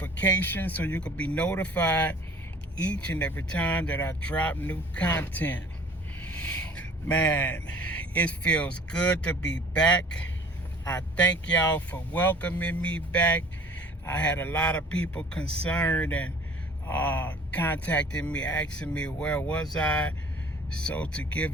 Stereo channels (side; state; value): both; normal; correlation 0.49